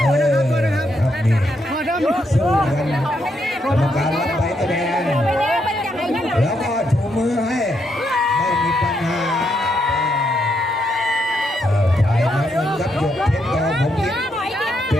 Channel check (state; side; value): normal; both; correlation 0.78